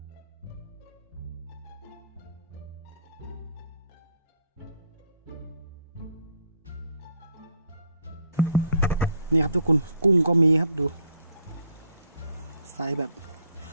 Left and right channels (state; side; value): inverted; both; correlation -0.64